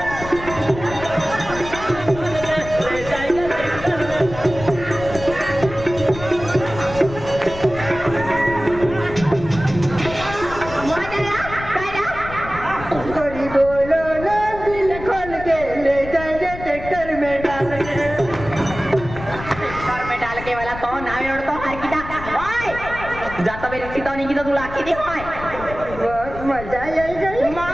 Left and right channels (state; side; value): noise; left; rumble, 12 dB below the sound